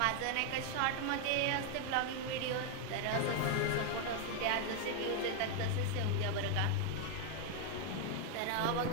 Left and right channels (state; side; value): different; both; correlation 0.01